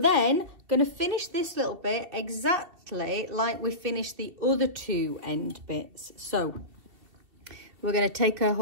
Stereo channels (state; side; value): late; left; 2.7 ms